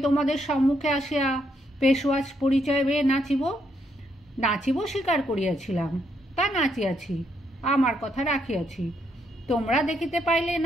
তোমাদের সম্মুখে আসিয়া পেশোয়াজ পরিচয় পেয়ে নাচিব। নাচিব স্বীকার করিয়াছিলাম, তা নাচিয়াছি, আমার কথা রাখিয়াছি। তোমরা দেখিতে পাইলে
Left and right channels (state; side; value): normal; both; correlation 0.75